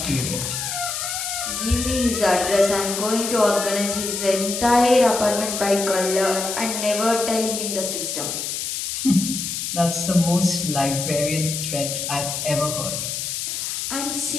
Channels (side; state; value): left; noise; hiss, 3 dB below the sound